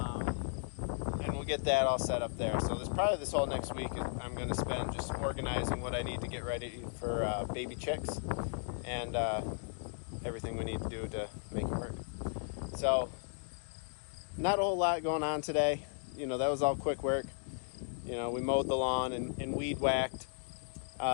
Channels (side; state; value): right; silent; digital silence